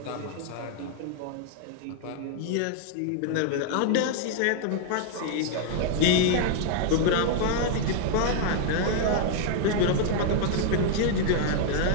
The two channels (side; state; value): both; different; correlation 0.00